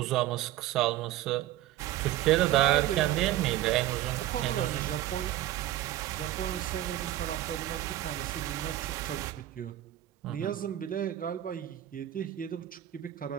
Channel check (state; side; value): quieter; left; 13.7 dB